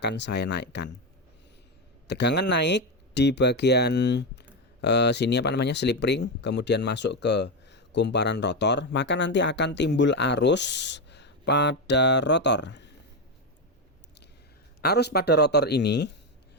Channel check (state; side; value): normal; both; correlation 0.10